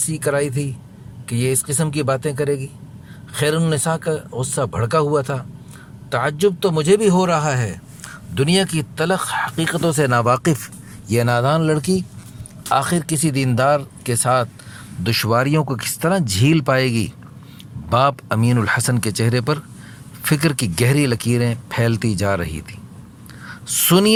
کرائی تھی کہ یہ اس قسم کی باتیں کرے گی۔ خیر النساء کا غصہ بھڑکا ہوا تھا۔ تعجب تو مجھے بھی ہو رہا ہے، دنیا کی تلخ حقیقتوں سے ناواقف یہ نادان لڑکی آخر کسی دیندار کے ساتھ دشواریوں کو کس طرح جھیل پائے گی۔ باپ امین الحسن کے چہرے پر فکر کی گہری لکیریں پھیلتی جا رہی تھیں۔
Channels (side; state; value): both; identical; correlation 1.00